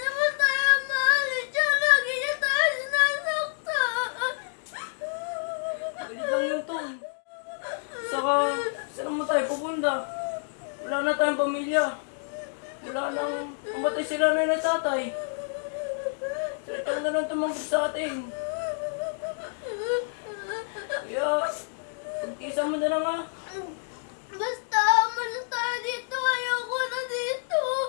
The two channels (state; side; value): silent; right; digital silence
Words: tayo maalis. Diyan lagi niya tayo sinasaktan. Galit lang yun, Tong. Saka, saan naman tayo pupunta? Wala na tayong pamilya. Wala nang umatay sila na ng tatay. Sila na lang tumangkot sa atin. Kaya, pagtisan mo na lang ha. Basta, umalis tayo dito. Ayoko na dito.